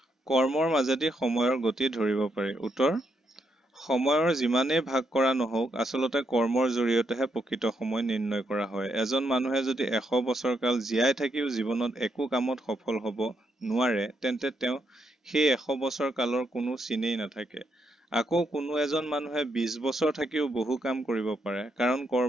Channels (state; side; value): normal; both; correlation 0.79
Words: কৰ্মৰ মাজেদি সময়ৰ গতি ধৰিব পাৰি। উত্তৰ, সময়ৰ যিমানেই ভাগ কৰা নহওক আচলতে কৰ্মৰ জৰিয়তেহে প্ৰকৃত সময় নিৰ্ণয় কৰা হয়। এজন মানুহে যদি 100 বছৰ কাল জীয়াই থাকিও জীৱনত একো কামত সফল হ'ব নোৱাৰে, তেন্তে তেওঁ সেই 100 বছৰ কালৰ কোনো চিনেই নাথাকে। আকৌ কোনো এজন মানুহে 20 বছৰ থাকিও বহু কাম কৰিব পাৰে, কাৰণ